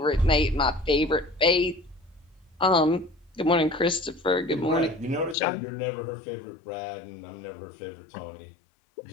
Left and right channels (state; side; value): drops out; right; at 5.4 s